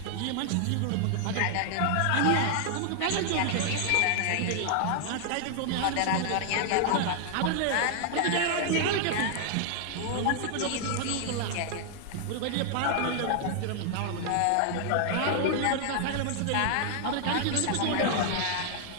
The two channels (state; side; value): different; both; correlation 0.00